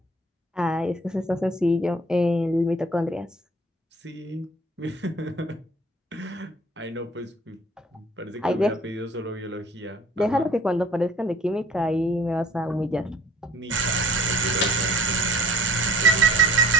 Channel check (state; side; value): normal; both; correlation 0.52